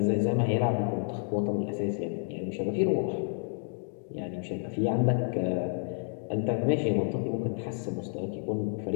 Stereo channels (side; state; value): right; silent; 58 dB below the other